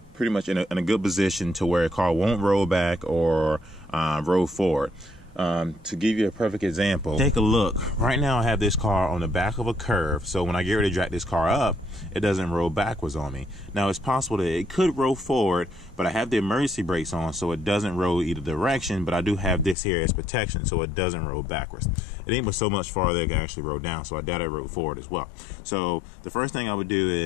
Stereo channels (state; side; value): drops out; right; at 19.8 s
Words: pretty much in a good position to where a car won't roll back or roll forward. To give you a perfect example, take a look. Right now I have this car on the back of a curve, so when I get ready to drag this car up, it doesn't roll backwards on me. Now it's possible that it could roll forward, but I have the emergency brakes on, so it doesn't roll either direction, but I do have this here as protection, so it doesn't roll backwards. It ain't but so much farther it can actually roll down, so I doubt it roll forward as well. So the first thing I would do